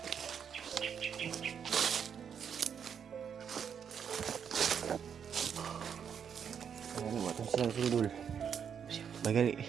Silang sundul. Bagali.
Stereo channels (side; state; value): left; quieter; 7.6 dB